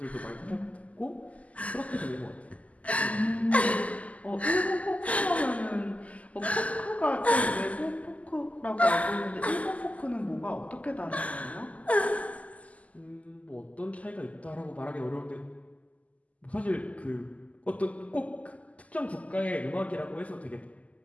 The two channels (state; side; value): late; right; 0.071 ms